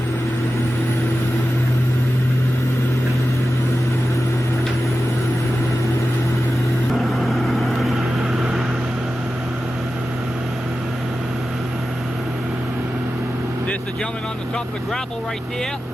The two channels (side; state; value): both; normal; correlation 0.93